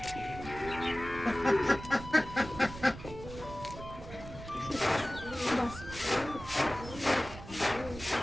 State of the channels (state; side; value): noise; right; rumble, 13 dB below the sound